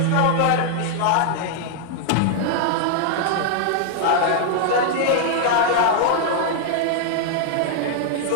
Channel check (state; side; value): different; both; correlation -0.01